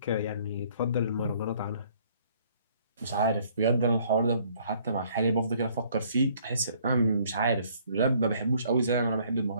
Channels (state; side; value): inverted; both; correlation -0.62